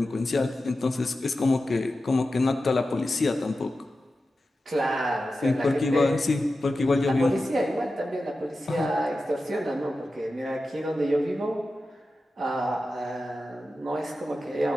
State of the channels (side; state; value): both; normal; correlation 0.92